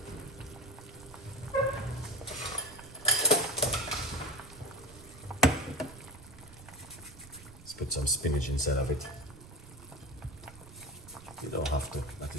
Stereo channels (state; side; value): noise; right; rumble, 18 dB below the sound